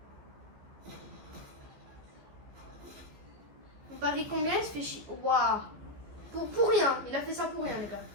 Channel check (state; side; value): late; left; 15 ms